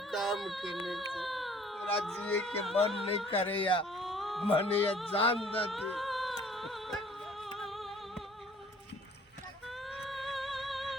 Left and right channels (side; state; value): both; normal; correlation 0.54